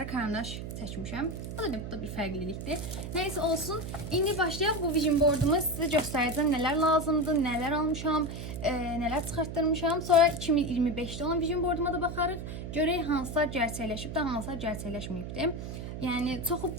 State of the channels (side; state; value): right; noise; hum, 7 dB below the sound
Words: karandaş çəkmişəm. Bu da bir fərqlilikdir. Neyse olsun. İndi başlayaq bu vision boardumu sizə göstərəcəm. Nələr lazımdır, nələr almışam, nələr çıxartdırmışam. Sonra 2025-də olan vision boarduma da baxarıq. Görək hansılar gerçəkləşib də, hansılar gerçəkləşməyibdir. Yəni çoxu